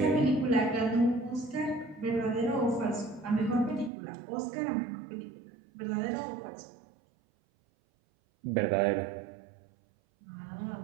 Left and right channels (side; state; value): left; drops out; at 3.9 s